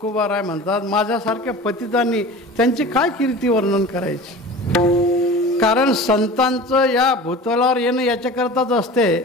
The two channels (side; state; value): both; normal; correlation 0.37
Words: म्हणतात माझ्यासारख्या पतितांनी त्यांची काय कीर्ती वर्णन करायची. कारण संतांचं या भूतलावर येणं याच्याकरताच असते,